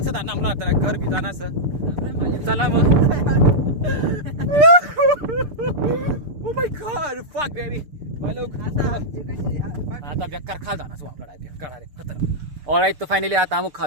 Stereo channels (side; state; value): left; late; 6.8 ms